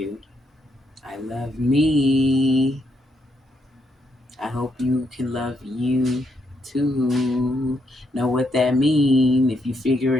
I love me. I hope you can love you too. Know what that mean. If you figure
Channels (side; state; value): both; normal; correlation 0.77